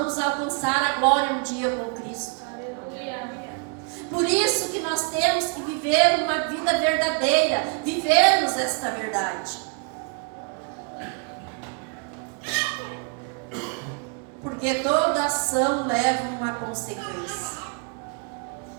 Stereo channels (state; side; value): quieter; left; 38.6 dB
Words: alcançar a glória um dia com Cristo. Por isso que nós temos que viver uma vida verdadeira, vivermos esta verdade. Porque toda ação leva uma consequência.